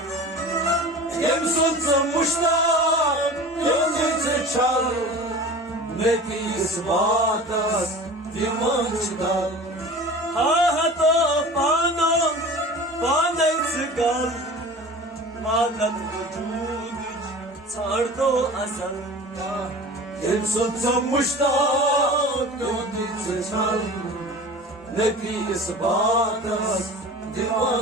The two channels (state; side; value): normal; both; correlation 0.38